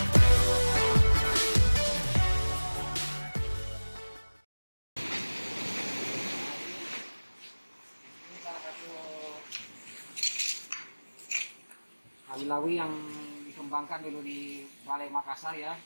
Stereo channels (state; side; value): inverted; both; correlation -1.00